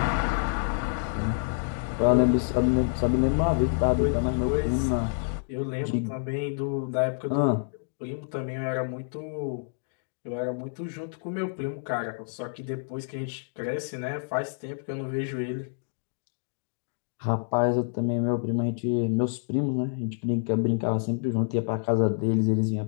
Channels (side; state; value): right; silent; digital silence